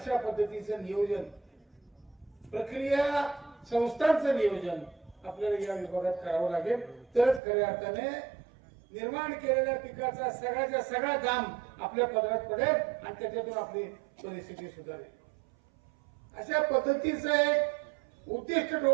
पद्धतीचं नियोजन, प्रक्रिया संस्थांचं नियोजन आपल्याला या विभागात करावं लागेल. तरच खऱ्या अर्थाने निर्माण केलेल्या पिकाचा सगळ्याचा सगळा दाम आपल्या पदरात पडेल आणि त्याच्यातून आपली परिस्थिती सुधारेल. अशा पद्धतीचं एक उद्दिष्ट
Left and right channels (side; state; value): left; drops out; at 7.4 s